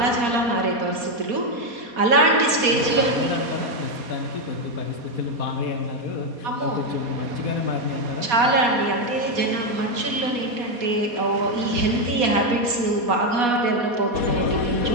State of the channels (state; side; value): late; left; 4.2 ms